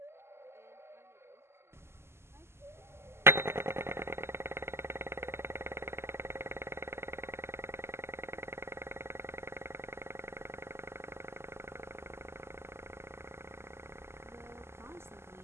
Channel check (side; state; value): left; late; 0.12 ms